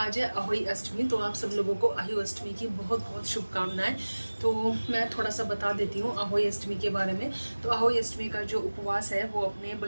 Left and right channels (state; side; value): inverted; both; correlation -1.00